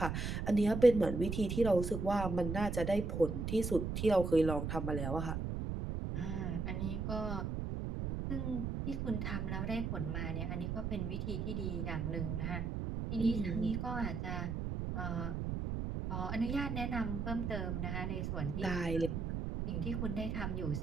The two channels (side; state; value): right; noise; rumble, 2 dB below the sound